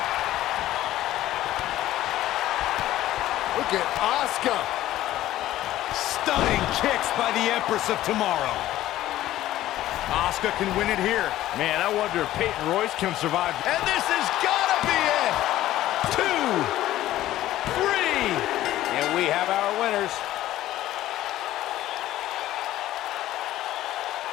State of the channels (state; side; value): quieter; right; 14.3 dB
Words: Look look at Asuka. Stunning kicks by the Empress of Tomorrow. Asuka can win it here. Man, I wonder if Peyton Royce can survive. And this has gotta be it! 2, 3. And we have our winners.